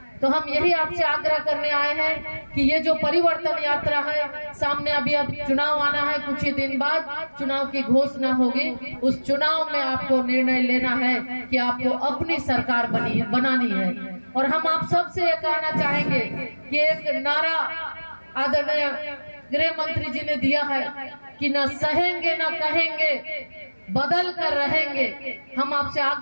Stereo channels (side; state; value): both; inverted; correlation -1.00